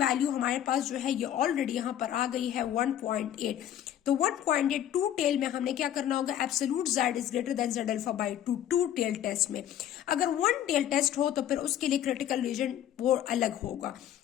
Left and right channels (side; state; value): right; quieter; 11.0 dB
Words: हमारे पास जो है ये ऑलरेडी यहाँ पर आ गई है 1.8, तो 1.8 टू टेल में हमने क्या करना होगा, absolute z is greater than z alpha by 2 two tail test में। अगर वन टेल टेस्ट हो तो फिर उसके लिए क्रिटिकल रीजन वो अलग होगा।